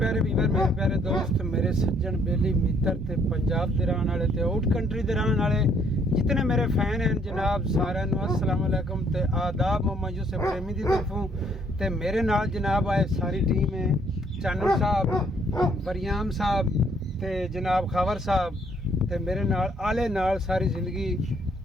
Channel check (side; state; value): both; normal; correlation 0.66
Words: ਵੀਰ, ਮੇਰੇ ਪਿਆਰੇ ਦੋਸਤ, ਮੇਰੇ ਸੱਜਣ ਬੇਲੀ ਮਿੱਤਰ ਤੇ ਪੰਜਾਬ ਦੇ ਰਹਿਣ ਵਾਲੇ ਤੇ ਆਊਟ ਕੰਟਰੀ ਦੇ ਰਹਿਣ ਵਾਲੇ ਜਿਤਨੇ ਮੇਰੇ ਫੈਨ ਹਨ ਜਨਾਬ, ਸਾਰਿਆਂ ਨੂੰ अस्सलाम वालेकुम ਤੇ ਆਦਾਬ। ਮੁਹੰਮਦ ਯੂਸਫ ਪ੍ਰੇਮੀ ਦੀ ਤਰਫੋਂ ਤੇ ਮੇਰੇ ਨਾਲ ਜਨਾਬ ਆਏ ਸਾਰੀ ਟੀਮ ਹੈ। ਚਾਨਣ ਸਾਹਿਬ, ਵਰਿਆਮ ਸਾਹਿਬ ਤੇ ਜਨਾਬ ਖਾਵਰ ਸਾਹਿਬ ਤੇ ਮੇਰੇ ਨਾਲ ਆਲੇ ਨਾਲ ਸਾਰੀ ਜ਼ਿੰਦਗੀ